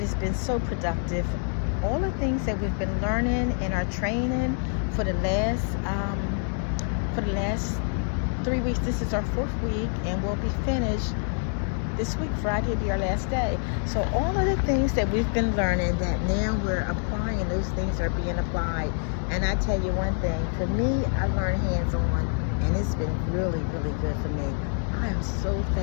it's been so productive. All the things that we've been learning in our training for the last 3 weeks. This is our fourth week, and we'll be finished this week. Friday will be our last day. So all of the things that we've been learning, that now we're applying, those things are being applied. And I tell you one thing, for me, I learned hands-on, and it's been really, really good for me. I am so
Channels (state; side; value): silent; right; 56 dB below the other